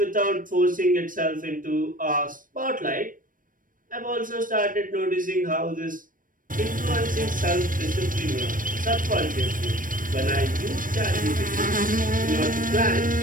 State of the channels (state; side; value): late; left; 0.40 ms